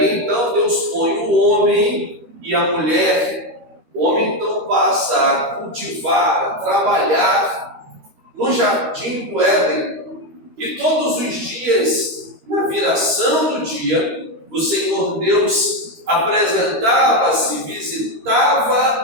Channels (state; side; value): late; left; 13 ms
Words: então Deus põe o homem e a mulher. O homem então passa a cultivar, a trabalhar no jardim do Éden, e todos os dias, na viração do dia, o Senhor Deus apresentava-se,